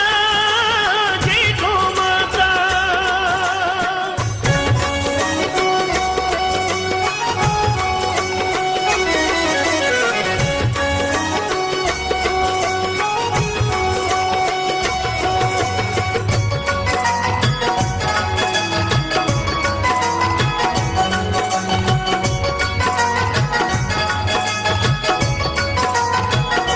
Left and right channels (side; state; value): both; identical; correlation 1.00